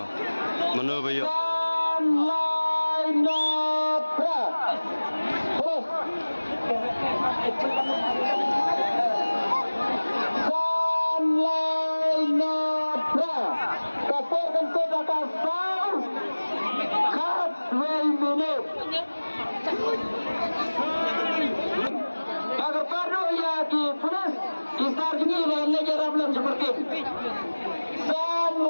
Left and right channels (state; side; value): inverted; both; correlation -1.00